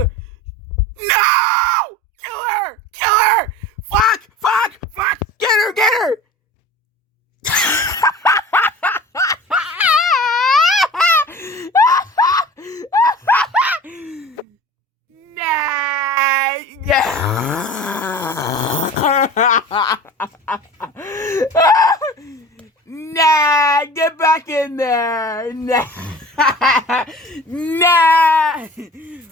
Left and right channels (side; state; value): both; normal; correlation 0.39